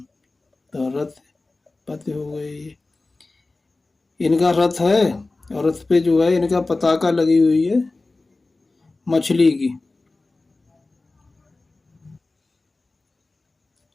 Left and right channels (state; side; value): quieter; right; 3.3 dB